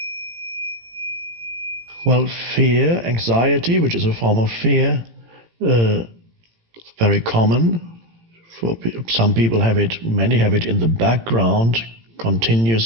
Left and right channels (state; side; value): late; left; 18 ms